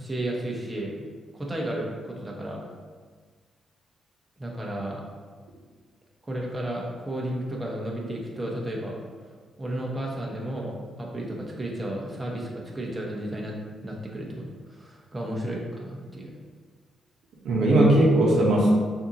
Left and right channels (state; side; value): normal; both; correlation 0.77